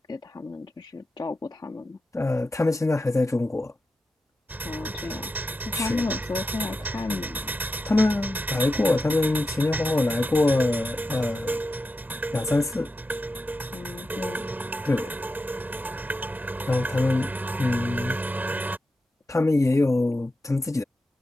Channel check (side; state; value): both; normal; correlation 0.90